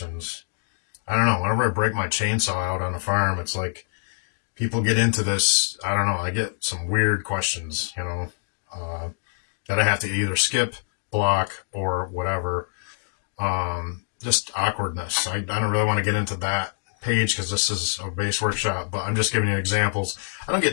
I don't know, whenever I break my chainsaw out on a farm, it's like people get into this. I don't know, I get some weird questions, that I have to either skip, block, or whatever. Just awkwardness. I don't really want to get into that page because this is a bass workshop, but I'm just giving you examples. I don't get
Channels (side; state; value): right; silent; digital silence